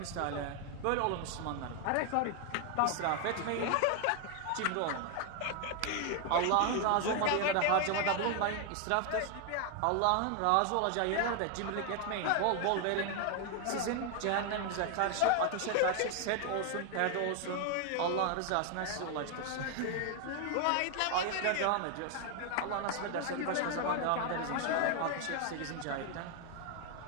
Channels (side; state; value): both; different; correlation 0.00